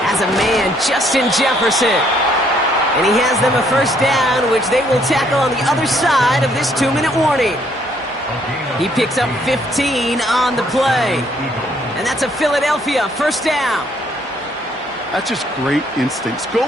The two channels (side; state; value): both; normal; correlation 0.67